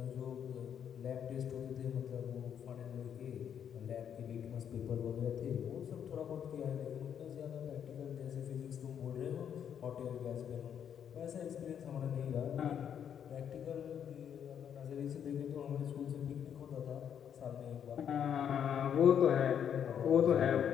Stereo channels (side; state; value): right; quieter; 8.6 dB